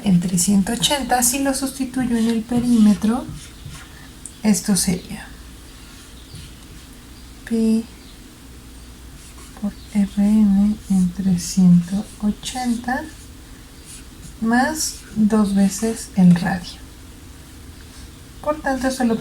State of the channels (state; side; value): identical; both; correlation 1.00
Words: entre 180, si lo sustituyo en el perímetro, esto sería pi por Rn entre 180 más 2 veces el radio. Por tanto, esto lo